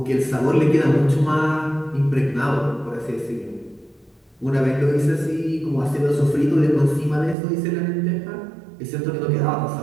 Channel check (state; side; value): drops out; left; at 7.4 s